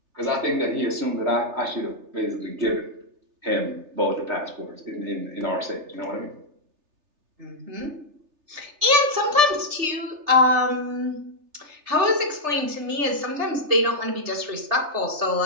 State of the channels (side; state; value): left; late; 3.3 ms